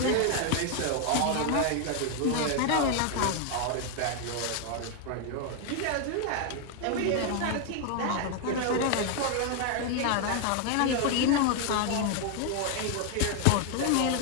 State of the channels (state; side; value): different; both; correlation 0.00